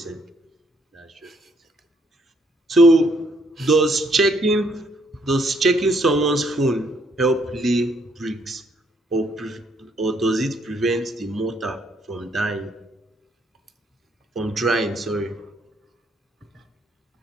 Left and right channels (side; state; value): both; normal; correlation 0.70